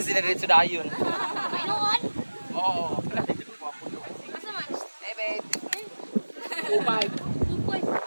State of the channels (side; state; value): both; inverted; correlation -1.00